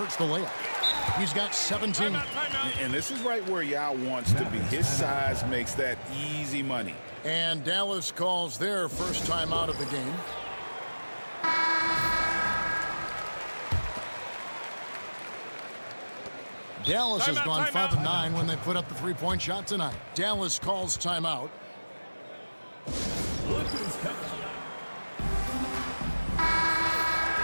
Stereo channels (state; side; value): inverted; both; correlation -1.00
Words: the layup. He's got 17. And this is right where Yao wants to be. His size makes that easy money. And Dallas calls their first time out of the game. Dallas has gone 5 of 9 when they put up the 3-point shot tonight. Dallas calls timeout. Look who's coming.